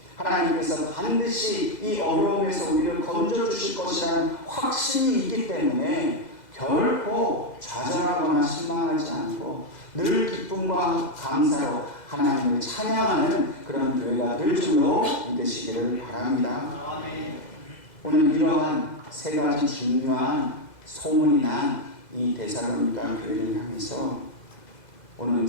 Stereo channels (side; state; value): right; late; 2.0 ms